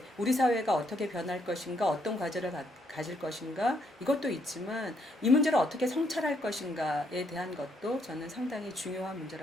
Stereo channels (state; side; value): normal; both; correlation 0.73